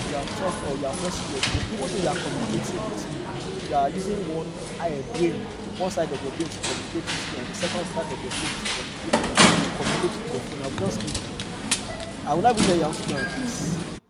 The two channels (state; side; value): identical; both; correlation 1.00